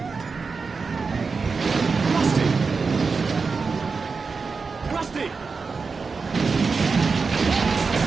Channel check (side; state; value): left; quieter; 4.7 dB